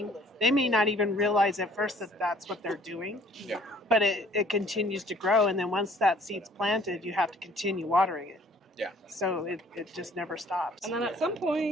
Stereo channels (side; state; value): both; normal; correlation 0.57